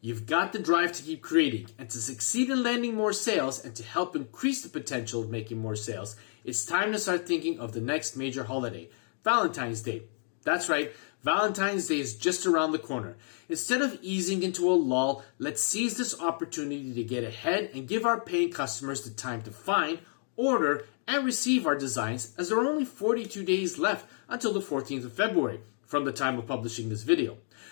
You've got the drive to keep creating, and to succeed in landing more sales and to help increase the potential of making more sales, it's time to start thinking of the next major holiday, Valentine's Day. That's right, Valentine's Day is just around the corner. Instead of easing into a lull, let's seize this opportunity to get ahead and give our paying customers the time to find, order, and receive our designs, as there are only 42 days left until the 14th of February from the time of publishing this video.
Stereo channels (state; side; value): silent; right; 58 dB below the other